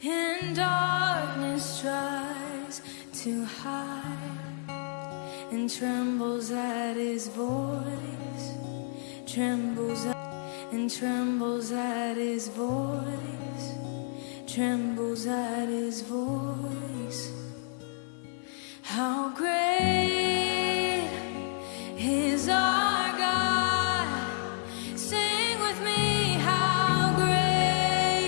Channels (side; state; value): right; silent; 58 dB below the other